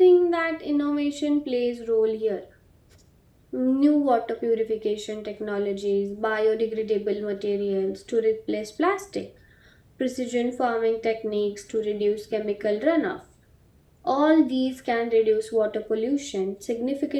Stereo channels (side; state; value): both; identical; correlation 1.00